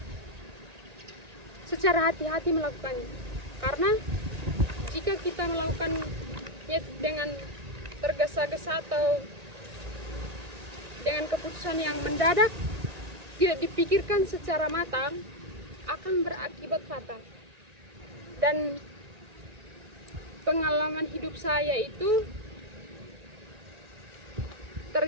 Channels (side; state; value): left; late; 1.6 ms